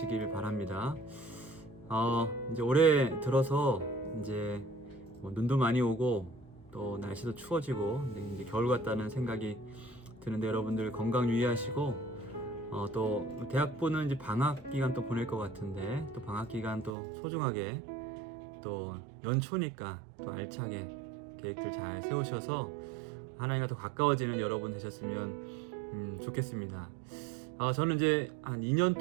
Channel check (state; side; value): drops out; left; at 16.9 s